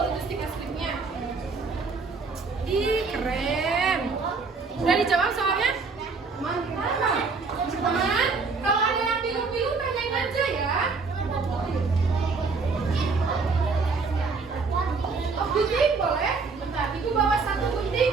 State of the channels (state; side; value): quieter; left; 4.5 dB